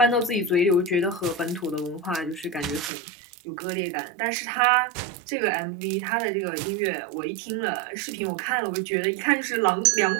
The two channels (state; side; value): drops out; left; at 2.9 s